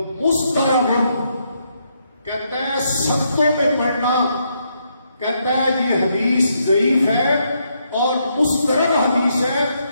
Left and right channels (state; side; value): inverted; both; correlation -0.77